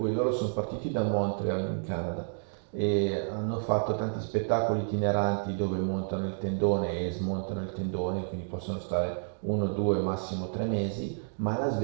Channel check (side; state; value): left; silent; digital silence